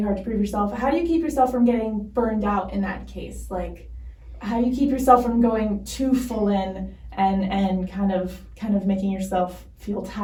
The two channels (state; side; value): identical; both; correlation 1.00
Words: hard to prove yourself, how do you keep yourself from getting burned out in that case? Like, how do you keep yourself from going too full in and kind of making yourself feel